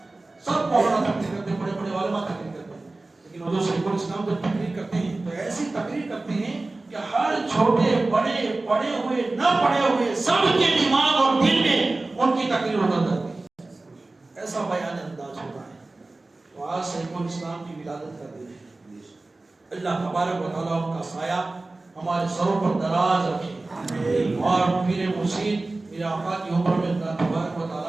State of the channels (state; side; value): quieter; left; 3.1 dB